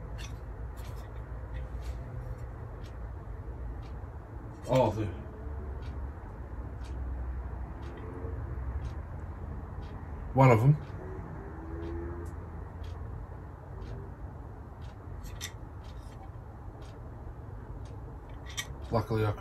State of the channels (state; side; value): identical; both; correlation 1.00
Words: Oh, one of them. Luckily I